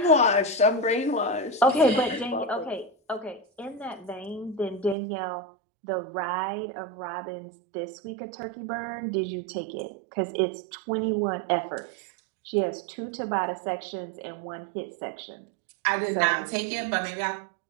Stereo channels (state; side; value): drops out; left; at 5.0 s